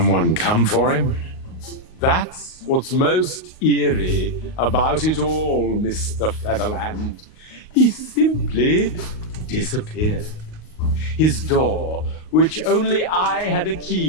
come for him? That's what's most eerie about it all, Mr. Featherland. He simply disappeared. His door, which only I had a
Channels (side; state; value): right; late; 38 ms